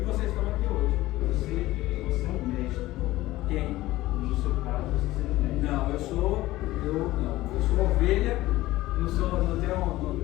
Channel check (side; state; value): right; quieter; 17.0 dB